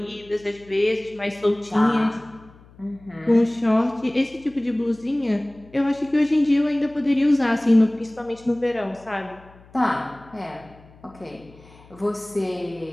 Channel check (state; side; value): noise; left; hum, 25 dB below the sound